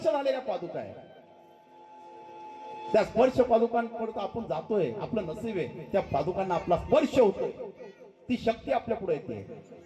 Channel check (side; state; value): both; identical; correlation 1.00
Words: झालेल्या पादुका आहे, त्या स्पर्श पादुकांपर्यंत आपण जातोय, आपलं नसीब आहे त्या पादुकांना आपला स्पर्श होतोय, ती शक्ती आपल्या पुढे येते,